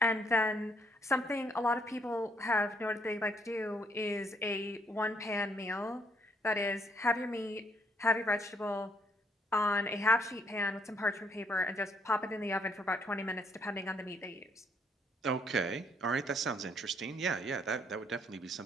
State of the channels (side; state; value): both; normal; correlation 0.68